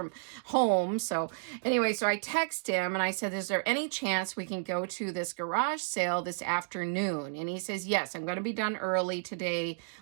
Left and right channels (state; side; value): silent; left; digital silence